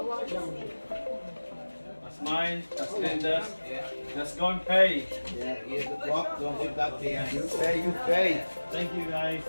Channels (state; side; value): inverted; both; correlation -1.00